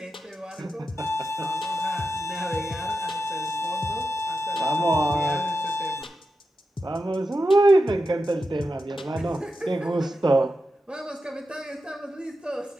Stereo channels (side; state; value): both; normal; correlation 0.89